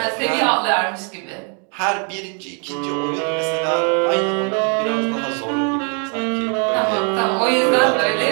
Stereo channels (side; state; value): left; quieter; 39.8 dB